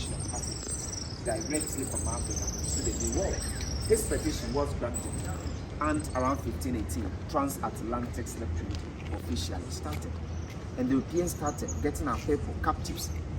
of Africans directly from Africa to the New World. This petition was granted, and around 1518, transatlantic slave trade officially started. And the Europeans started getting our people captives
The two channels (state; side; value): identical; both; correlation 1.00